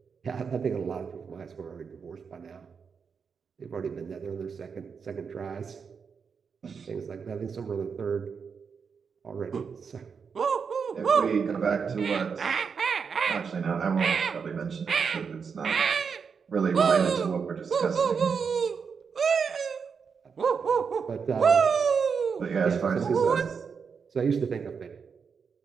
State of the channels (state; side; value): quieter; left; 6.0 dB